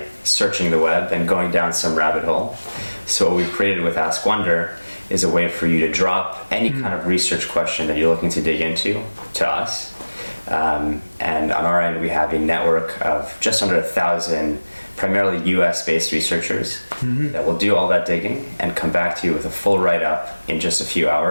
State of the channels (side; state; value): both; inverted; correlation -1.00